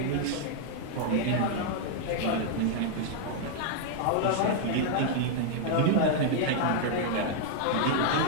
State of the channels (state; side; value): different; both; correlation -0.01